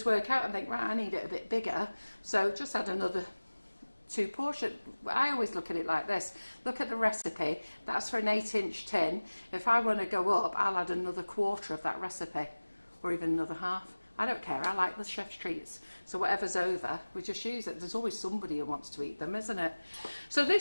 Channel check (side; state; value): both; inverted; correlation -1.00